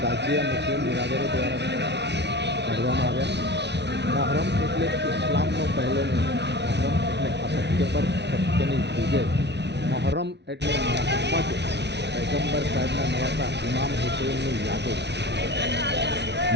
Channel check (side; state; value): left; late; 0.50 ms